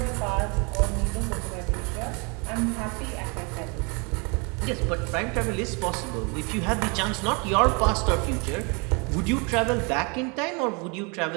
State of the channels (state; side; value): quieter; left; 31.9 dB